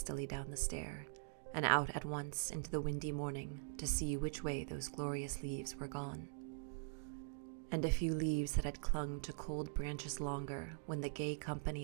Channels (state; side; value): silent; left; digital silence